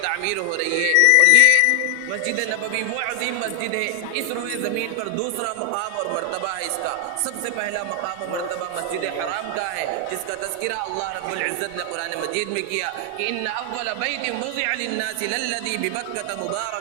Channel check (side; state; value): both; different; correlation 0.00